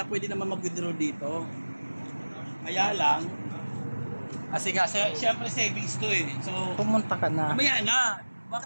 pwede naman mag-withdraw dito. Kaya lang, kasi nga, siyempre savings to So, Pumunta ka na. mamaya na.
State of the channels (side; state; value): both; inverted; correlation -1.00